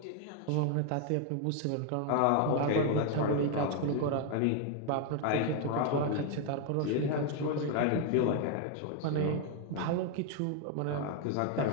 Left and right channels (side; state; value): both; different; correlation 0.01